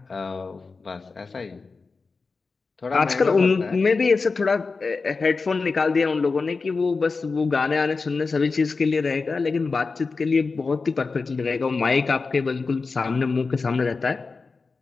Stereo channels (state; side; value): quieter; right; 4.3 dB